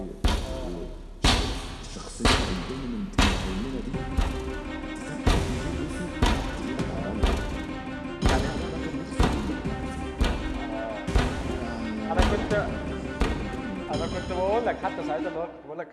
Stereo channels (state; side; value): identical; both; correlation 1.00